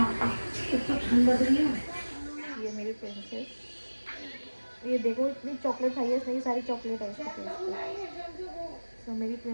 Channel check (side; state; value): both; inverted; correlation -1.00